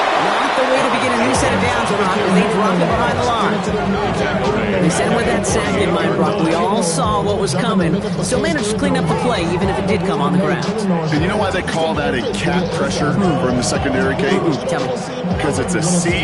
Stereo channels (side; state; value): both; identical; correlation 1.00